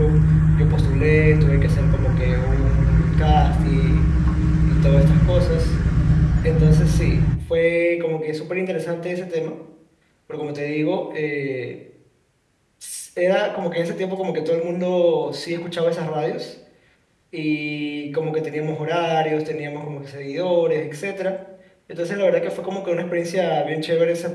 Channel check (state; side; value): identical; both; correlation 1.00